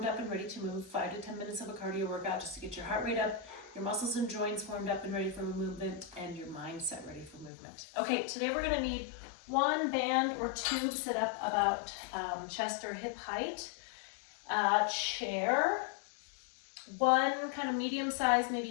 up and ready to move, 5 to 10 minutes of a cardio workout just to get your heart rate up, your muscles and joints warmed up and ready for movement, and your mindset ready for movement. Okay, today we're going to need one band or tube set up about chest or hip height, chair, one kind of medium size,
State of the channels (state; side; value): drops out; right; at 7.5 s